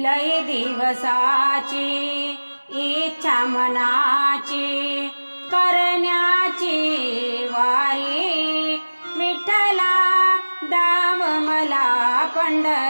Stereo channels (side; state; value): both; inverted; correlation -1.00